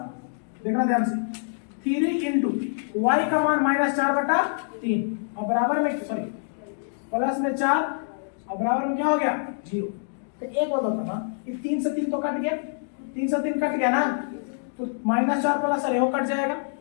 देखना ध्यान से 3 इंटू y का मान -4/3 और बराबर में सॉरी प्लस में 4 और बराबर में क्या हो गया 0। तो एक बात होता ना कि 3 से 3 तो कट गया, 3 से 3 कट गया ना, तो -4 प्लस अरे वो कट जाएगा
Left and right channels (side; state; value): right; silent; digital silence